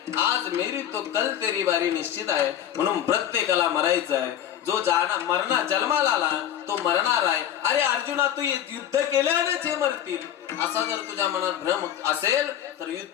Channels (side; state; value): right; quieter; 10.5 dB